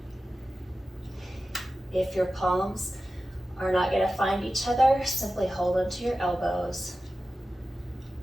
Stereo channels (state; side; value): normal; both; correlation 0.94